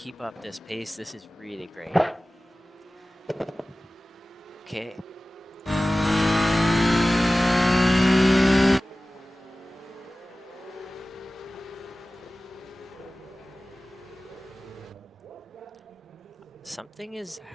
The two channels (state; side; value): normal; both; correlation 0.97